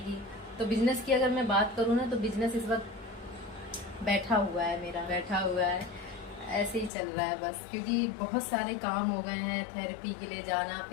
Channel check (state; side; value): drops out; right; at 6.9 s